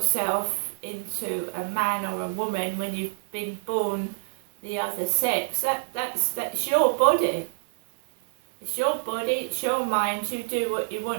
into a man or a woman when you've been born the other sex, that's your body. It's your body, it's your mind. You do what you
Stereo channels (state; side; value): silent; left; 59 dB below the other